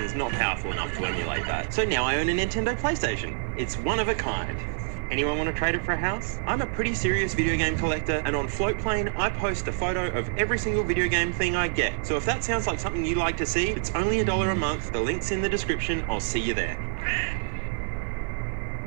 is not powerful enough to emulate that. So now I own a Nintendo PlayStation. It's one of a kind. Anyone want to trade it for a house? I'm a pretty serious video game collector, and on Floatplane, I post a photo of every single video game thing I get. So if that sounds like something you like to see, it's only $1 a month. The link's in the description. I'll see you there.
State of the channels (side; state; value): left; silent; 59 dB below the other